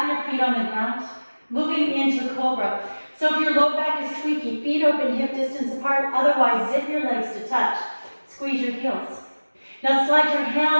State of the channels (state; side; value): inverted; both; correlation -1.00